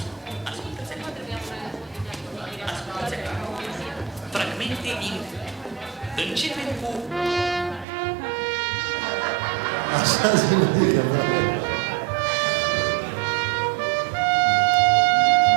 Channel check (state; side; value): drops out; left; at 7.9 s